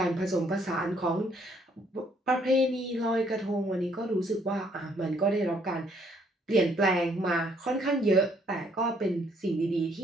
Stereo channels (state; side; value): normal; both; correlation 0.67